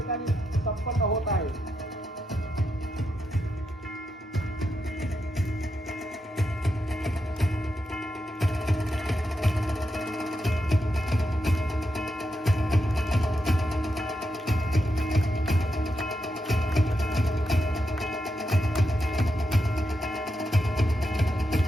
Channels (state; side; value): normal; both; correlation 0.84